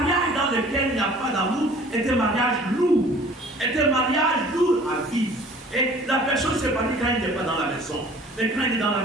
dans lequel il n'y a pas d'amour est un mariage lourd. Est un mariage lourd à vivre. Et la personne s'épanouit quand il n'est pas dans la maison. Mais quand il est dans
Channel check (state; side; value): normal; both; correlation 0.50